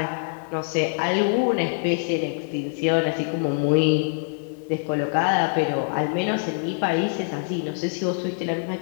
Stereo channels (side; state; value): right; silent; digital silence